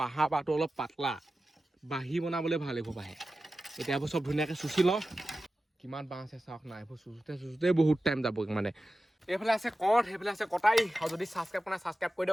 বাঁহটো অলপ পাতলা বাঁহী বনাবলৈ ভাল এইবোৰ বাঁহে এতিয়া এইবোৰ চব ধুনীয়াকৈ চুচি লওঁ কিমান বাঁহ আছে চাওক নাই এইবোৰ চুচোতে বহুত টাইম যাব মানে এইফালে আছে কঠ সেইফালে আছে কটাই আৰু যদি ছাবস্ক্ৰাইব কৰা ছাবস্ক্ৰাইব কৰি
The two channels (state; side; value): normal; both; correlation 0.94